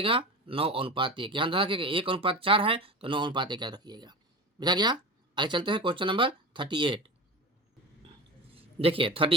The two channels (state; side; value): normal; both; correlation 0.29